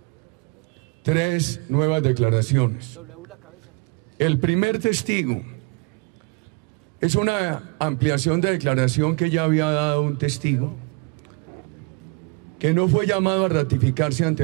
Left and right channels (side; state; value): left; quieter; 31.0 dB